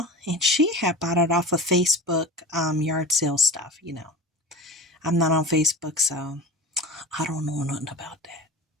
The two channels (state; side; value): normal; both; correlation 0.32